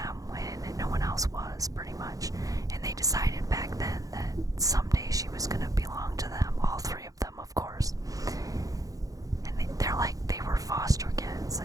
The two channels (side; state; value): left; late; 0.17 ms